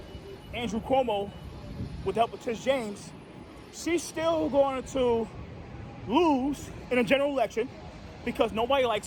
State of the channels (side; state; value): both; identical; correlation 1.00